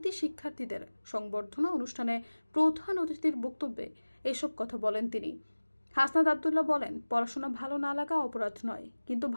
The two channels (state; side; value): inverted; both; correlation -1.00